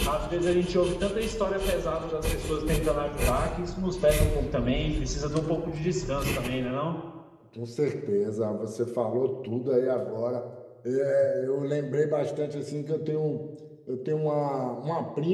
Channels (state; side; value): identical; both; correlation 1.00